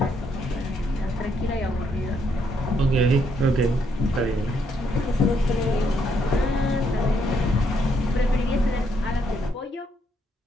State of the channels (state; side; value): normal; both; correlation 0.74